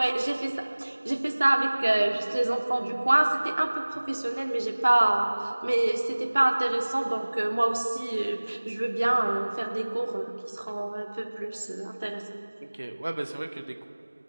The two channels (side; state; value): both; inverted; correlation -1.00